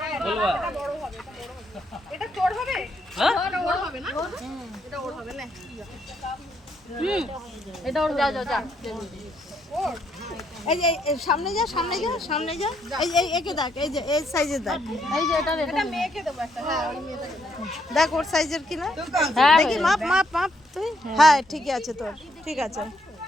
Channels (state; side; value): normal; both; correlation 0.74